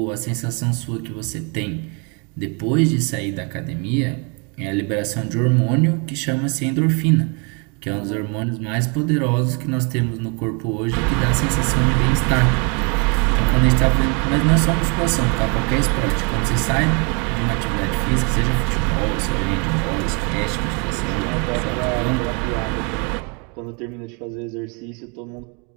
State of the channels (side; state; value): left; quieter; 34.0 dB